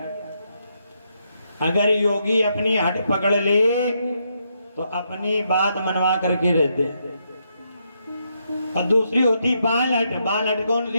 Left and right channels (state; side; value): inverted; both; correlation -0.79